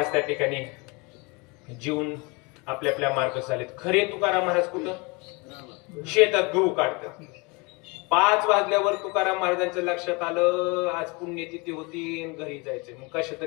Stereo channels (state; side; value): quieter; right; 28.3 dB